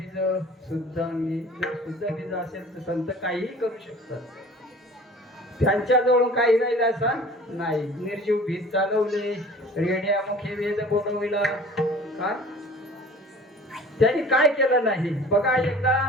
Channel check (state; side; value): normal; both; correlation 0.45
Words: शुद्ध अंगी. जर शुद्ध बीज असेल तर संत काहीही करू शकतात. त्यांच्याजवळून काही राहिलं असं नाही. निर्जीव भीत चालवले, रेड्यामुखी वेद बोलविला. काय त्यांनी काय केलं नाही? बघा एकदा